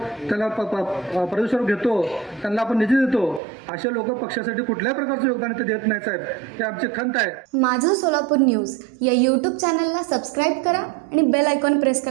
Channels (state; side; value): drops out; left; at 3.4 s